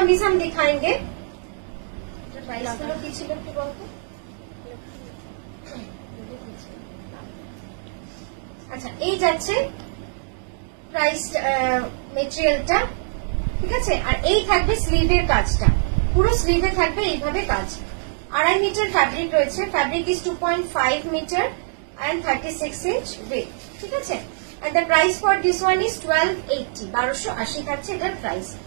हम दिखाएंगे, আচ্ছা এই যাচ্ছে প্রাইস মেটেরিয়ালটা, ঠিক আছে। আর এই থাকবে স্লিভের কাজটা, পুরো স্লিভে থাকবে এইভাবে কাজ। 2.5 মিটার ফ্যাব্রিক রয়েছে, fabric is 2.5 metre and 36 inch weight, ঠিক আছে। and the price for this one is 1280, 1280 থাকছে এটার প্রাইস।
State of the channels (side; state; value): left; silent; digital silence